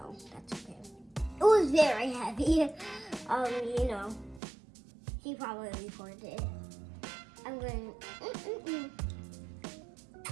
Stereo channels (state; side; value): drops out; left; at 4.4 s